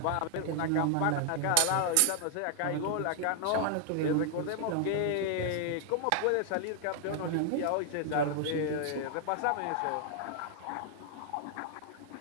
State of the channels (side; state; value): both; different; correlation 0.00